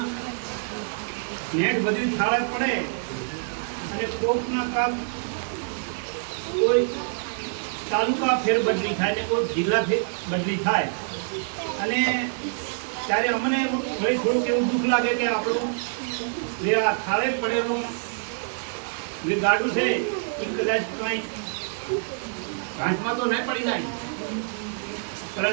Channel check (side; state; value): left; silent; 61 dB below the other